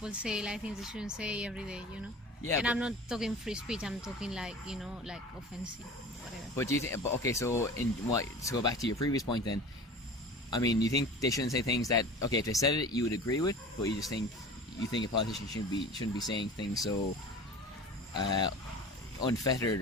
say like things they shouldn't say every day, you know? Yeah, and I'm not talking free speech, I'm talking like, you know, like offensive, whatever. But do you think... Okay, so to go back to your previous point then, I mean, you think they shouldn't say things that, okay, if they said it, you would agree with, but you think a politician shouldn't be saying things so unfettered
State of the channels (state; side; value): normal; both; correlation 0.38